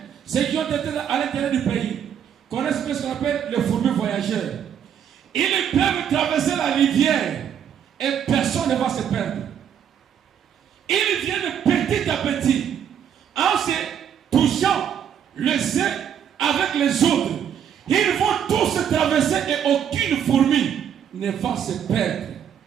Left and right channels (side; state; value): left; quieter; 8.7 dB